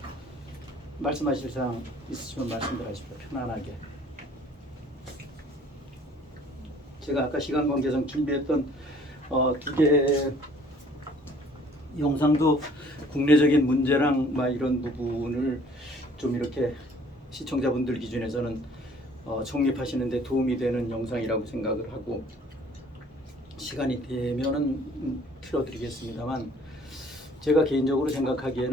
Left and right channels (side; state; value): both; normal; correlation 0.56